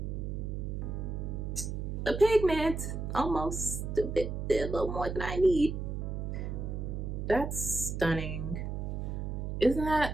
The pigment, almost a little more than I need. That's stunning. Isn't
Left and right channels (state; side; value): noise; right; hum, 3 dB below the sound